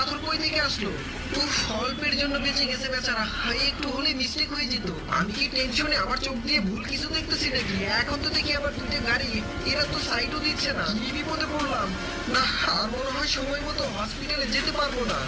কই থেকে আসলো? উফ, অল্পের জন্য বেঁচে গেছে বেচারা। হায়, একটু হলে মিস্টেক হয়ে যেত। আমি কি টেনশনে আমার চোখ দিয়ে ভুল কিছু দেখতেছি নাকি? এখন তো দেখি আবার দুটো গাড়ি, এরা তো সাইডও দিচ্ছে না। কি বিপদে পড়লাম! না, আর মনে হয় সময় মতো হসপিটালে যেতে পারবো না।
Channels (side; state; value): both; identical; correlation 1.00